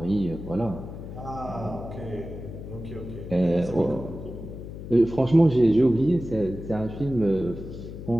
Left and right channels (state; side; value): noise; left; hum, 11 dB below the sound